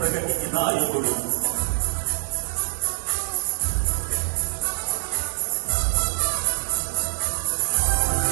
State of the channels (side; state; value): left; silent; digital silence